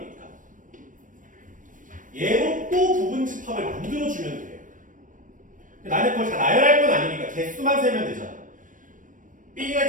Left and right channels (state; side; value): late; left; 0.38 ms